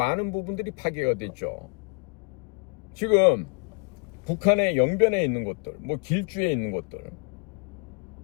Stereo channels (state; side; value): quieter; right; 32.9 dB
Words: 부분들이 파괴가 됐죠. 지금 북한의 영변에 있는 것들, 뭐 길주에 있는 것들,